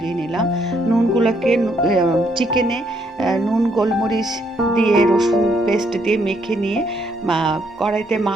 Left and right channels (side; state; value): both; normal; correlation 0.71